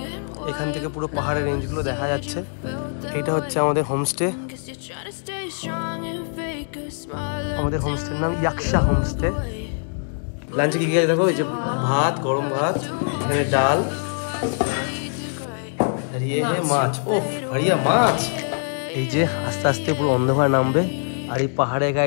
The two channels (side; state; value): right; silent; digital silence